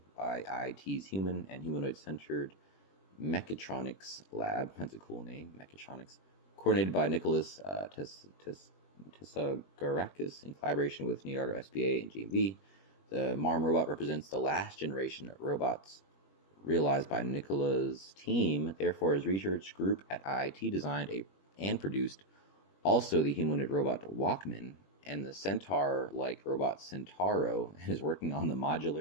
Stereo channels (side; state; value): right; late; 21 ms